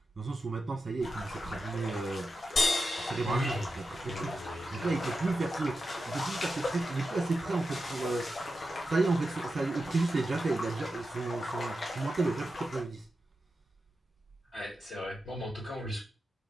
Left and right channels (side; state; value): both; normal; correlation 0.90